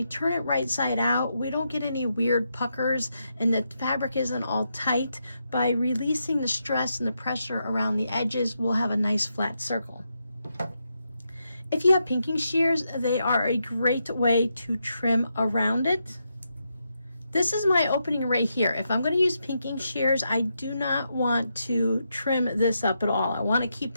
turn it right side out, we don't get any weird puckers and the fabric isn't all tight. By releasing the stress and the pressure around the edges, we'll have a nice flat circle. If you have pinking shears, they are a great way to trim around it. This is my opening right here. If I'm going to use pinking shears, I do not want to trim this up at all. I want to keep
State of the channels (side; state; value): both; inverted; correlation -0.83